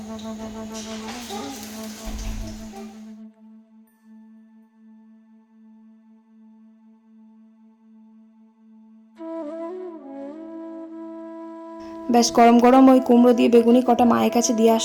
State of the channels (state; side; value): identical; both; correlation 1.00